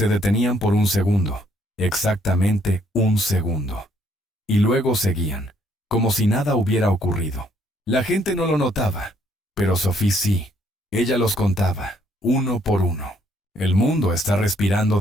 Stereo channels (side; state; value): both; normal; correlation 0.68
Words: detenían por un segundo, exactamente un segundo. Y luego seguían, como si nada hubiera ocurrido. La gente no lo notaba, pero Sophie sí. Ella los contaba, uno por uno. El mundo está respirando